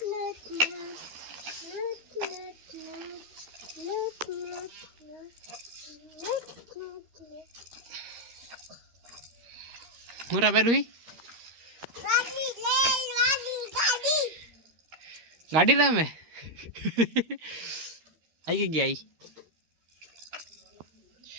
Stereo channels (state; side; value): late; left; 13 ms